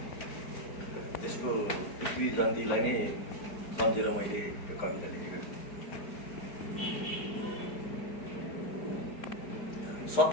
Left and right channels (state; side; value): late; right; 4.7 ms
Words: त्यसको पृथ्वी जयन्तीलाई नै सम्झेर मैले यो कविता लेखेको।